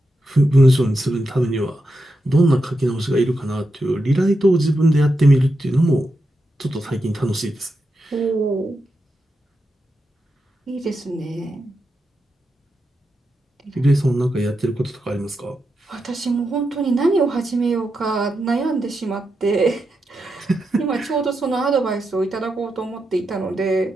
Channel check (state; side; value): normal; both; correlation 0.87